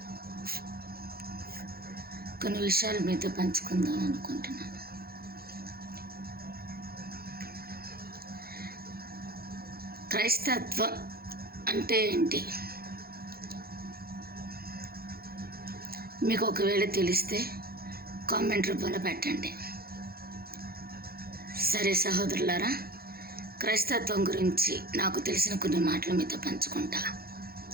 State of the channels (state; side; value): late; left; 0.44 ms